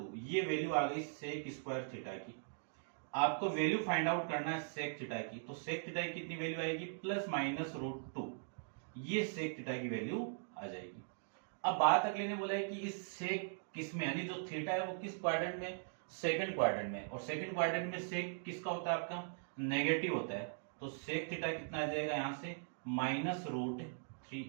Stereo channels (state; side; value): silent; left; digital silence